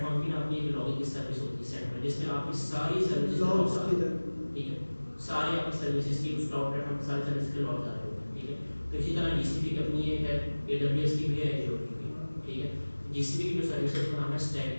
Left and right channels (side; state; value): both; inverted; correlation -1.00